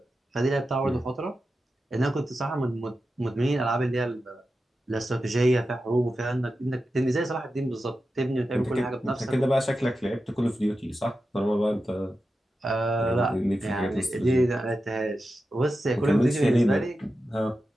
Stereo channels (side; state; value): both; normal; correlation 0.91